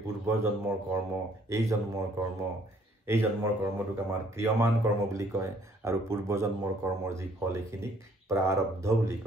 পূৰ্ব জন্মৰ কৰ্ম এই জন্মৰ কৰ্মটোক আমাৰ ক্ৰিয়মান কৰ্ম বুলি কয় আৰু পূৰ্ব জন্মৰ কৰ্মৰ যি ফল এইখিনিক প্ৰাৰব্ধ বুলি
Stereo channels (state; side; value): normal; both; correlation 0.62